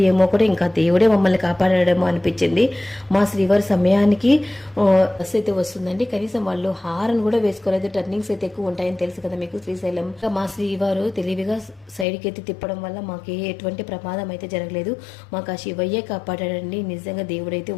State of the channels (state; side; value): drops out; right; at 12.1 s